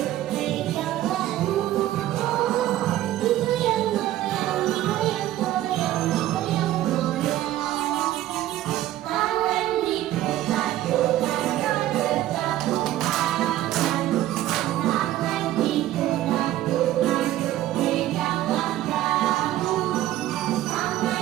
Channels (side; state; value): left; quieter; 14.0 dB